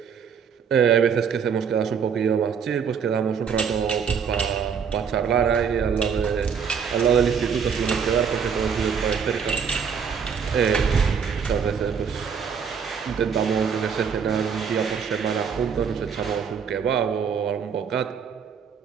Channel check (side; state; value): left; quieter; 6.7 dB